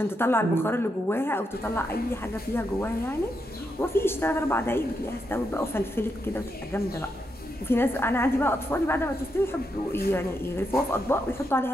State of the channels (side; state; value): both; normal; correlation 0.82